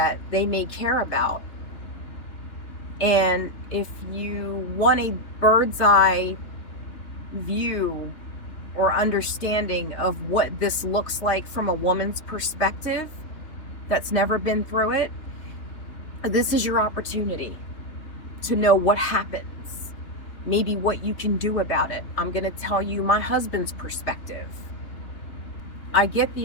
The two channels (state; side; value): late; right; 3.2 ms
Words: they may care about. And if you want a bird's eye view or understanding of what this looks like from a woman's perspective that's never been through it, this is your opportunity to know what happens, maybe what you can do about it. I'm going to tell you my husband's perspective. I get